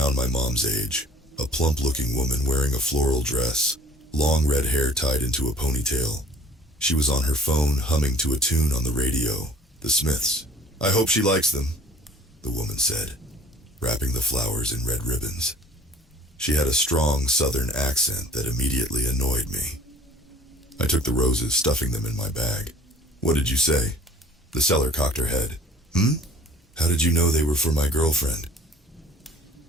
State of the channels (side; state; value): both; normal; correlation 0.50